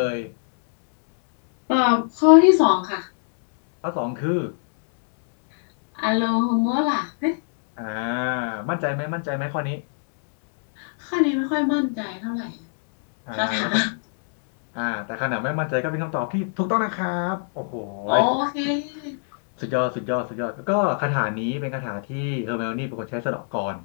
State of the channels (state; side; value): silent; right; digital silence